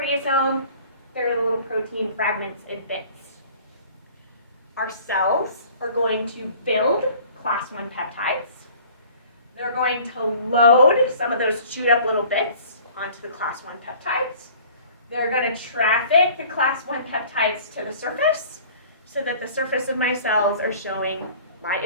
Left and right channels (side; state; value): both; inverted; correlation -0.49